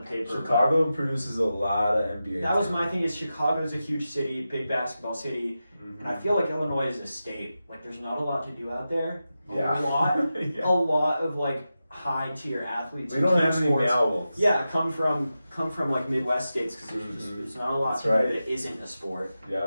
Chicago produces a lot of NBA. That was my thing. Is Chicago's a huge city, big basketball city, and I feel like Illinois is a state. Like there's not a lot to do out there. Yeah. A lot of like high tier athletes. We don't have any sports. male wolves. Yeah, come from like Midwest states because there's not a lot That's to right. do that isn't a sport.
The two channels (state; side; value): inverted; both; correlation -0.92